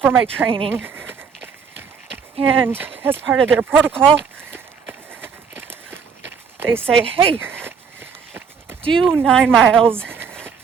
my training, and as part of their protocol, they say, hey, do 9 miles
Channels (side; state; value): left; quieter; 6.3 dB